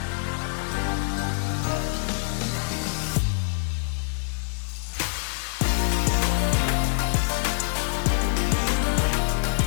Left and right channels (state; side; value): silent; right; digital silence